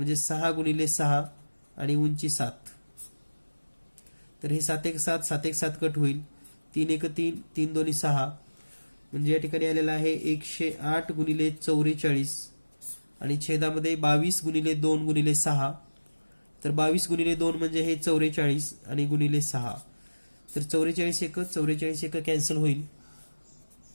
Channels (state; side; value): inverted; both; correlation -1.00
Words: 6 गुणिले 6 आणि उंची 7. तर हे 7 1 7 7 1 7 कट होईल, 3 1 3 3 2 6, म्हणजे या ठिकाणी आलेला आहे 108 गुणिले 44 आणि छेदामध्ये 22 गुणिले 2 गुणिले 6. तर 22 गुणिले 2 म्हणजे हे 44 आणि गुणिले 6, तर 44 1 कॅन्सल होईल.